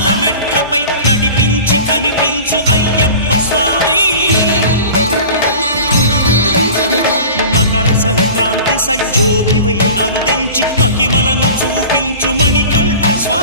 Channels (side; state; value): both; inverted; correlation -0.39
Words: మెట్లపై నడిపించి కనిపించు అయ్యప్ప స్వామి మకర సంక్రాంతి సజ్జోతివై అరుదెంచి మహిమలను చూపించు మణికంఠ